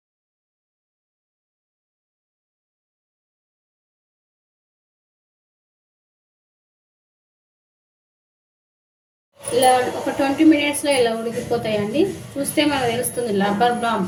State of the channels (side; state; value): both; identical; correlation 1.00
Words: ఇలా ఒక 20 మినిట్స్లో ఇలా ఉడికిపోతాయండి. చూస్తే మనకు తెలుస్తుంది రబ్బర్